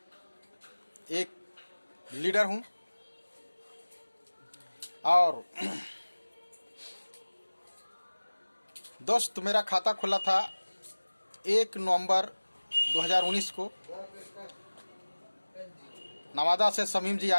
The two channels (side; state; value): both; inverted; correlation -1.00